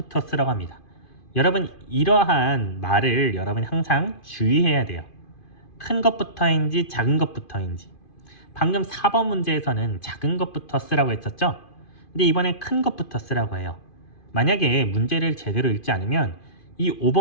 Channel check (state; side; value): late; right; 2.5 ms